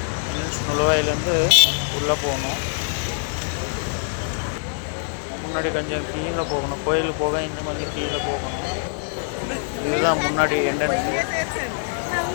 நுழைவாயிலேருந்து உள்ளே போகணும். முன்னாடி கொஞ்சம் கீழே போகணும், கோயிலுக்கு போக இன்னும் கொஞ்சம் கீழே போகணும். இதுதான் முன்னாடி என்ட்ரன்ஸு.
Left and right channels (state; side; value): silent; right; 55 dB below the other